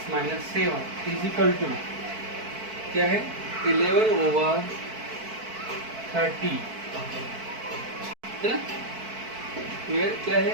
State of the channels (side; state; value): left; late; 4.5 ms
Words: - 7 इक्वल टू क्या है 11/30 है ना, वेयर क्या है